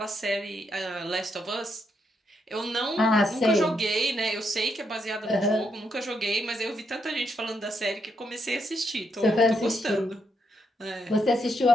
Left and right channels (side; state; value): both; normal; correlation 0.79